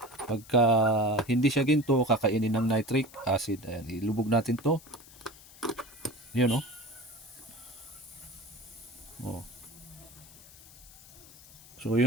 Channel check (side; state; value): left; noise; hiss, 21 dB below the sound